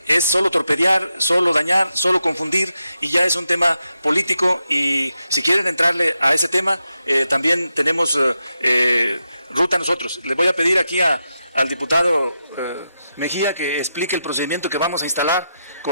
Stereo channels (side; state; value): both; inverted; correlation -0.87